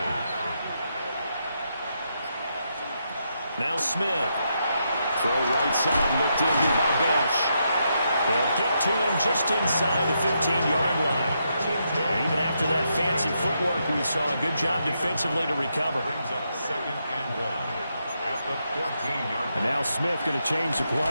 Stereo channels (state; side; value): inverted; both; correlation -0.81